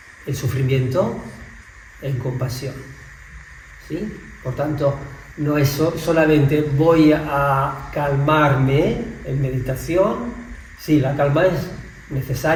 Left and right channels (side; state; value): both; identical; correlation 1.00